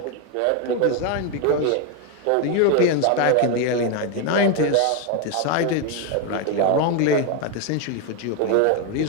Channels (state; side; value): different; both; correlation 0.01